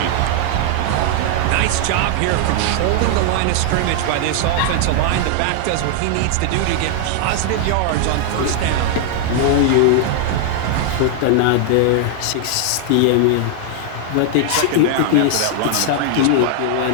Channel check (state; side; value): different; both; correlation -0.01